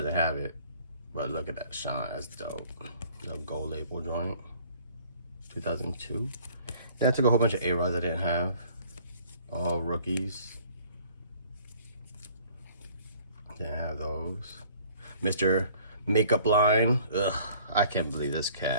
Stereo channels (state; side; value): inverted; both; correlation -0.55